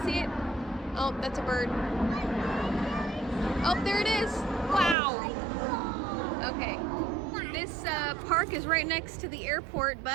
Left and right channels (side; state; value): left; drops out; at 5.0 s